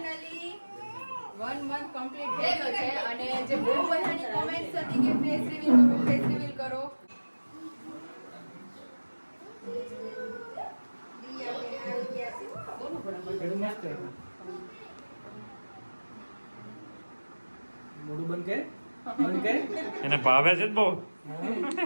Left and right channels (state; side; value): inverted; both; correlation -1.00